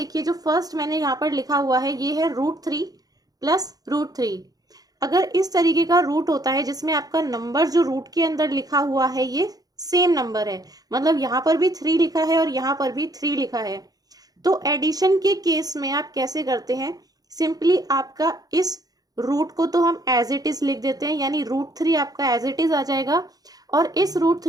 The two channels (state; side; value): late; left; 0.18 ms